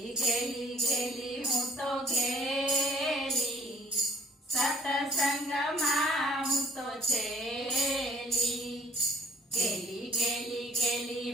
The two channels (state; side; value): normal; both; correlation 0.59